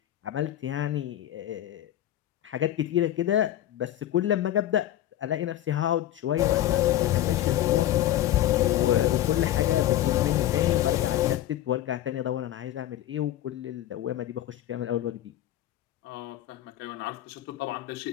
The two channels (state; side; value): quieter; right; 13.0 dB